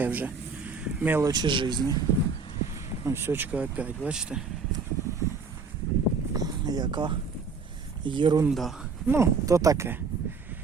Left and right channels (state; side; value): quieter; left; 4.8 dB